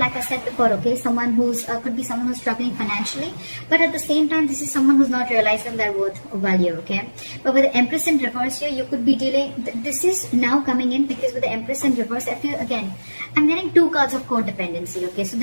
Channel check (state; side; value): inverted; both; correlation -1.00